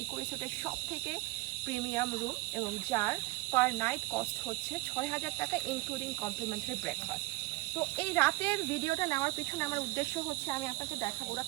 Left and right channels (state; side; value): quieter; left; 21.1 dB